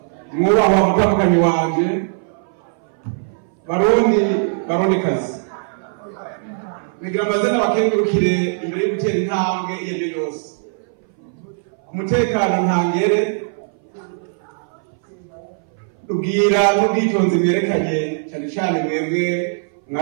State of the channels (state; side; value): silent; left; 61 dB below the other